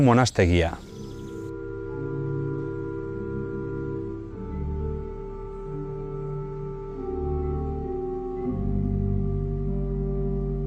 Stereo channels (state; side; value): identical; both; correlation 1.00